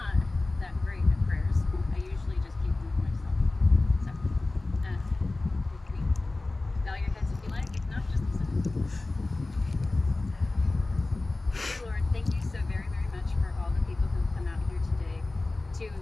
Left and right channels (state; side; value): quieter; right; 3.1 dB